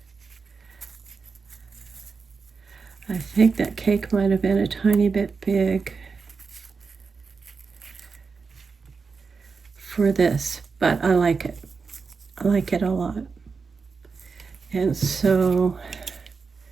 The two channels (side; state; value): left; quieter; 5.0 dB